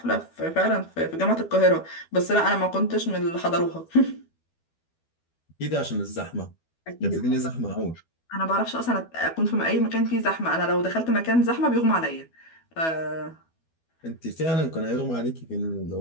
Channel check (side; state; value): right; late; 12 ms